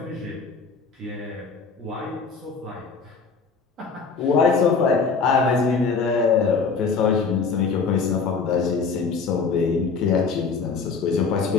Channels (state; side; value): quieter; right; 5.0 dB